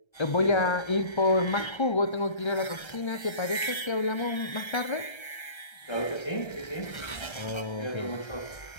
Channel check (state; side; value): late; right; 1.3 ms